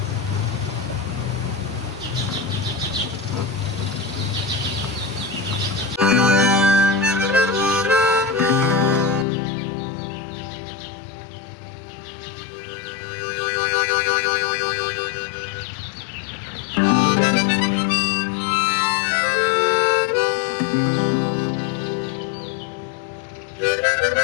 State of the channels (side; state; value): right; drops out; at 9.2 s